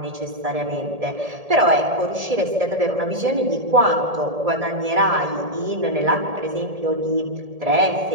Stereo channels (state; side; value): late; left; 1.7 ms